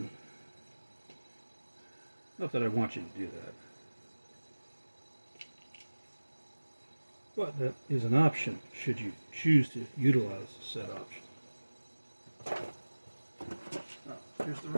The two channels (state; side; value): inverted; both; correlation -1.00